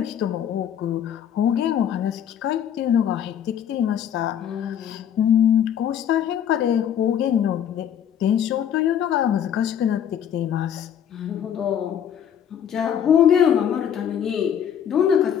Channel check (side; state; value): right; quieter; 9.2 dB